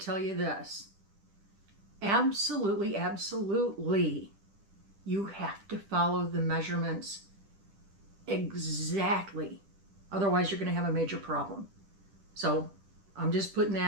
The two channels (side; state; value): left; late; 10 ms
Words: tell you this. Absolutely, absolutely, you have to follow the measurements exactly. Otherwise, you're going to have a major problem. So I'm just putting